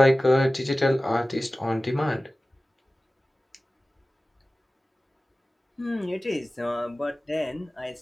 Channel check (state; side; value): normal; both; correlation 0.96